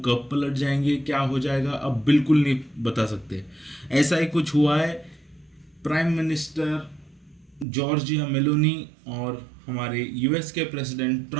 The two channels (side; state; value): left; drops out; at 7.7 s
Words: कब पलट जाएंगे, क्या हो जाएगा, अब बिल्कुल नहीं बता सकते। ऐसा ही कुछ हुआ है प्राइम मिनिस्टर जॉर्जिया मेलोनी और हमारे यूएस के प्रेसिडेंट